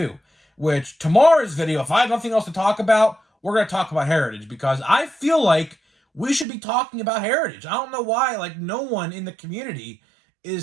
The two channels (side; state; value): left; drops out; at 6.5 s